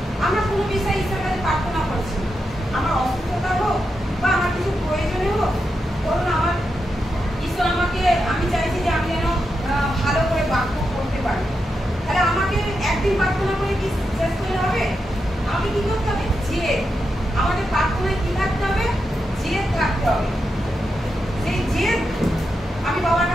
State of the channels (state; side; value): normal; both; correlation 0.86